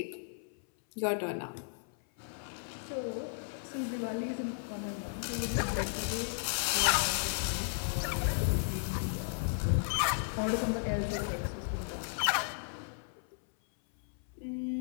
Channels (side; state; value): right; silent; 55 dB below the other